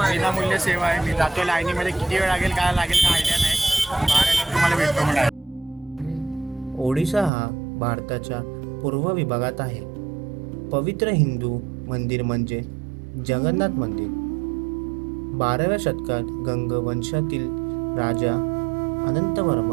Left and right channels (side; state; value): left; drops out; at 7.3 s